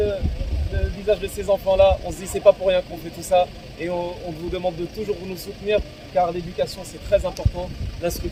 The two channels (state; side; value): identical; both; correlation 1.00